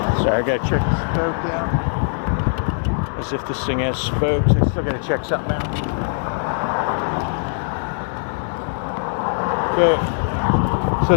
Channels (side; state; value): right; silent; digital silence